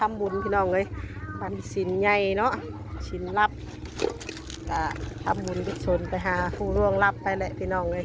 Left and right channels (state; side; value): identical; both; correlation 1.00